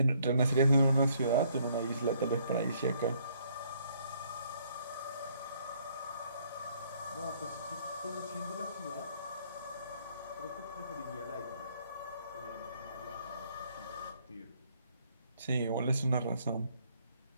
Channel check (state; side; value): inverted; both; correlation -0.66